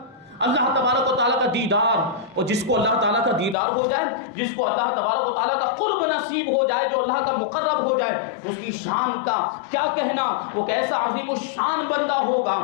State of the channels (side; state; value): right; drops out; at 3.6 s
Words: اللہ تبارک و تعالیٰ کا دیدار، اور جس کو اللہ تعالیٰ کا دیدار ہو جائے، جس کو اللہ تبارک و تعالیٰ کا قرب نصیب ہو جائے، جو اللہ کا مقرب ہو جائے، اس کی شان کا کیا کہنا، وہ کیسا عظیم الشان بندہ ہوگا